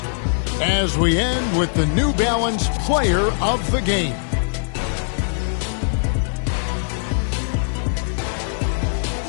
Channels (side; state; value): right; silent; digital silence